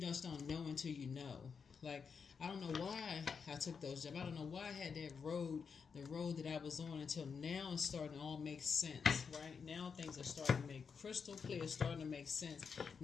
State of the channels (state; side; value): quieter; right; 5.9 dB